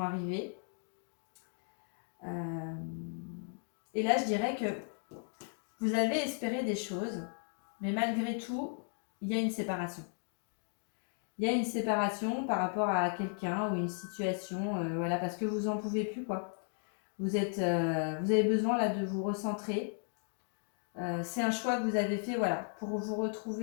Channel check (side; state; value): right; silent; 54 dB below the other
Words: arriver. Et là, je dirais que vous avez espéré des choses, mais malgré tout, il y a une séparation. Il y a une séparation par rapport à quelqu'un ou une situation, voilà, parce que vous n'en pouvez plus, quoi. Vous avez besoin là de vous recentrer. C'est un choix que vous avez fait, voilà, pour vous